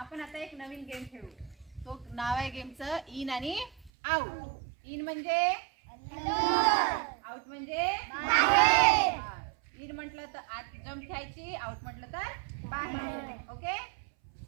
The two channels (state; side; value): drops out; left; at 3.9 s